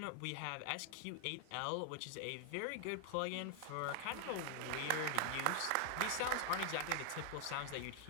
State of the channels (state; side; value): different; both; correlation 0.00